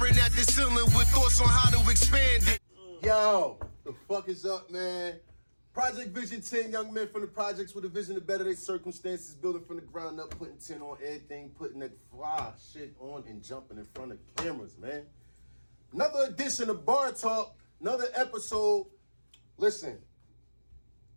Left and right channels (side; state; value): both; inverted; correlation -1.00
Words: at the ceiling with thoughts on how to expand it. Yo, the fuck is up, man? ProjectVizion 10 young men from the projects with a vision to better their circumstances, building from the ground up, putting 10 on everything, putting that fly shit on and jumping in front of cameras, man. Another edition of BarTawk, another episode. Listen,